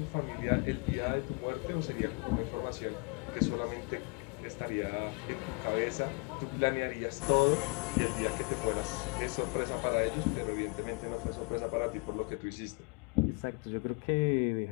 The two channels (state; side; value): quieter; right; 33.4 dB